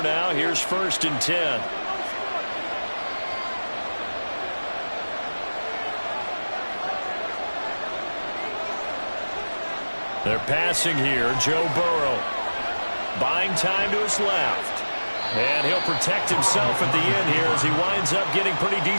now, here's 1st and 10. They're passing here. Joe Burrow. Buying time to his left. And he'll protect himself at the end here as he winds up getting pretty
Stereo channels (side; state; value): both; inverted; correlation -1.00